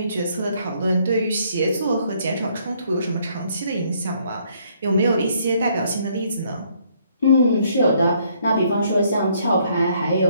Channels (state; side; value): inverted; both; correlation -0.67